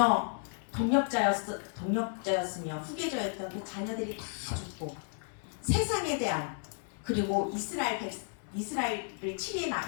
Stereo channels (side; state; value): right; silent; 56 dB below the other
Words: 동력자였으며 후계자였던 그 자녀들이 다 죽고 세상에 대한 그리고 이스라엘을 치리해